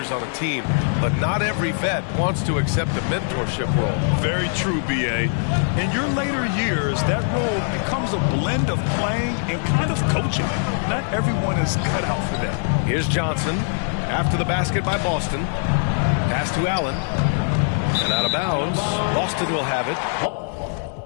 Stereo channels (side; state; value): right; silent; 57 dB below the other